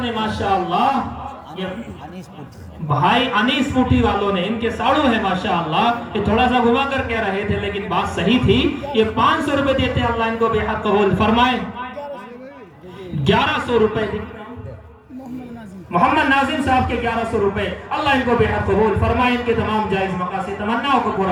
نے ماشاءاللہ، بھائی انیس پوٹی والوں نے، ان کے ساڑو ہے ماشاءاللہ، یہ تھوڑا سا گھما کر کہہ رہے تھے لیکن بات صحیح تھی، یہ 500 روپے دیتے ہیں، اللہ ان کو بے حد قبول فرمائے۔ 1100 روپے محمد ناظم صاحب کے 1100 روپے، اللہ ان کو بے حد قبول فرمائے، ان کے تمام جائز مقاصد تمناؤں کو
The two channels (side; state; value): both; identical; correlation 1.00